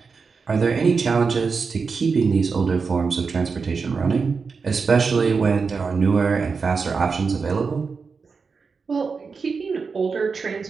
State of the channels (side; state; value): left; quieter; 5.1 dB